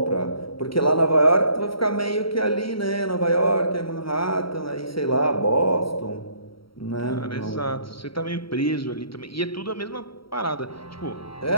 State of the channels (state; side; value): late; right; 0.75 ms